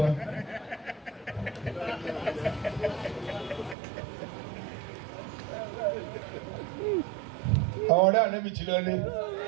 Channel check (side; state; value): left; drops out; at 3.8 s